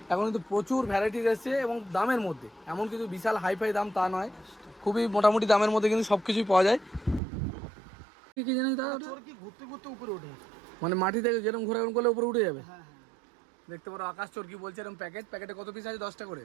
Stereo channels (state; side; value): drops out; left; at 7.2 s